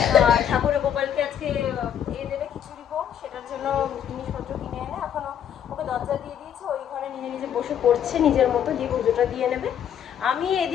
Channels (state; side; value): quieter; right; 9.3 dB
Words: ঠাকুরের গোপালকে আজকে দেবে খিচুড়ি ভোগ, সেটার জন্য জিনিসপত্র কিনে এনে এখনও ওকে দরজা দিয়ে দিয়েছে। ওই ঘরে নিজে নিজে বসে পড়ছে নিজের মতো, দিয়ে পুজোটা দিয়ে নেবে। আমি